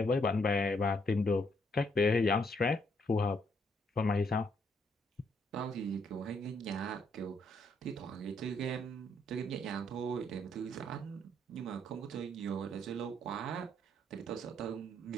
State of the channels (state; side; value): normal; both; correlation 0.72